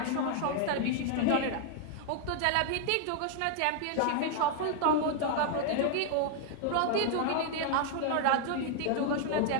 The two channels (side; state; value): both; different; correlation 0.00